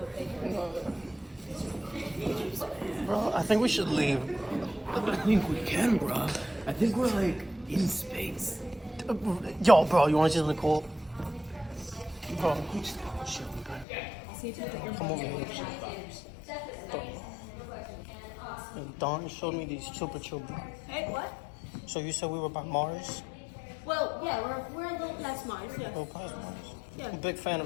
Bro, I think we should leave. I think we can, bro. I think we're like in space. Yo, bro, you want to see something cool? Oh, we just got shit. Come over here. And Dawn showed me these super chill bro. Hey, what? So you said we were by Mars? Well, yeah, we're a little past Mars, yeah. Oh, past Mars. Yeah. I'm a big fan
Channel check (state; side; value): drops out; right; at 13.9 s